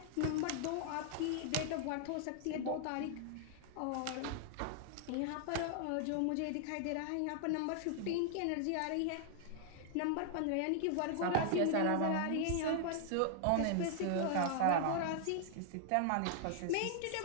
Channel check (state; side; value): different; both; correlation 0.00